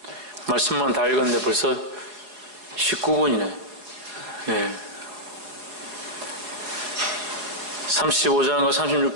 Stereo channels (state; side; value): late; left; 4.7 ms